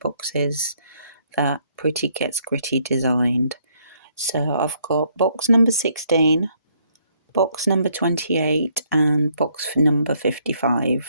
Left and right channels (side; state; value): both; inverted; correlation -0.69